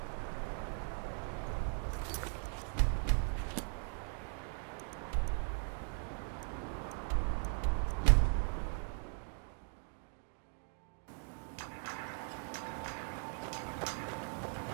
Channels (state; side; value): silent; left; 52 dB below the other